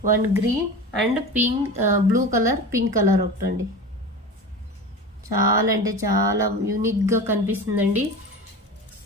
1 green and pink, blue colour, pink colour ఒకటండి. చాలా అంటే చాలా యూనిక్గా కనిపిస్తుందండి.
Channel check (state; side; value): normal; both; correlation 0.31